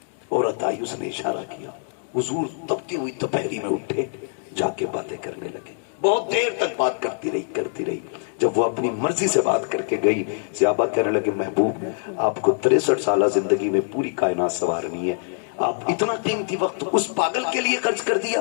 عورت آئی، اس نے اشارہ کیا، حضور تپتی ہوئی دوپہری میں اٹھے، جا کے باتیں کرنے لگے. بہت دیر تک بات کرتی رہی. جب وہ اپنی مرضی سے بات کر کے گئی، صحابہ کہنے لگے محبوب آپ کو 63 سالہ زندگی میں پوری کائنات سنوارنی ہے، آپ اتنا قیمتی وقت اس پاگل کے لیے خرچ کر دیا،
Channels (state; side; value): silent; right; digital silence